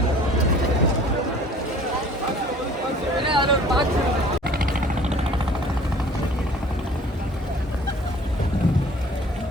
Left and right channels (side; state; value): both; normal; correlation 0.50